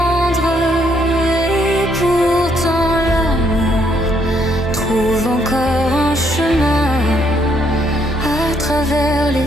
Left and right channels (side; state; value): both; normal; correlation 0.71